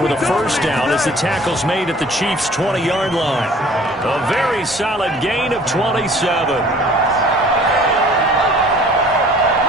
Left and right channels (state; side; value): normal; both; correlation 0.51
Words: with a first down as the tackle's made at the Chiefs' 20-yard line. A very solid gain of 27.